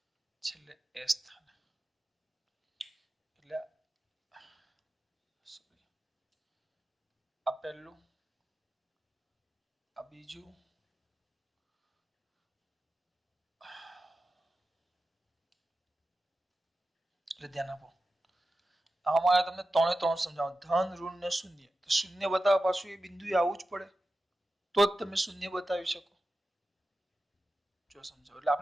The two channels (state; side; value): normal; both; correlation 0.93